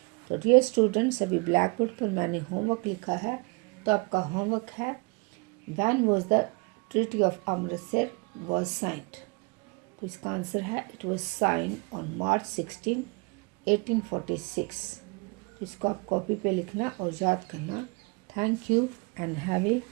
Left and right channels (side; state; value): left; quieter; 28.9 dB